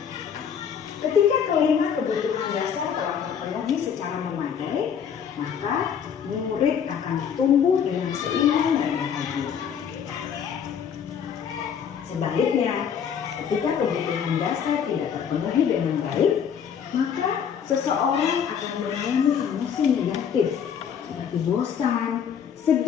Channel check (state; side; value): quieter; right; 7.8 dB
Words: Ketika kelima kebutuhan dasar telah terpenuhi secara memadai, maka murid akan tumbuh dengan seimbang dan bahagia. Sebaliknya, ketika kebutuhan dasar tidak terpenuhi dengan baik, maka seseorang akan mengalami emosi negatif seperti bosan,